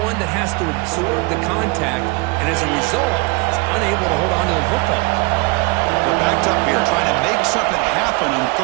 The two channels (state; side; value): quieter; left; 27.6 dB